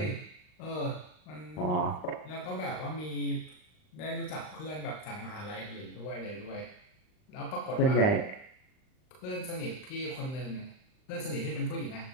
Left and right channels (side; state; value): right; late; 39 ms